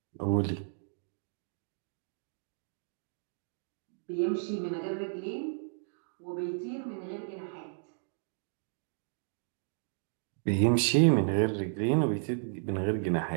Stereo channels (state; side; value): silent; left; digital silence